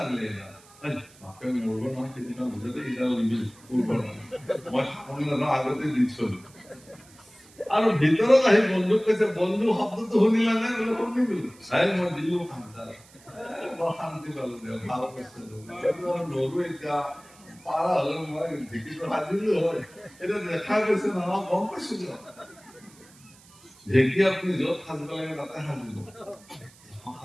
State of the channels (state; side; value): noise; right; hiss, 25 dB below the sound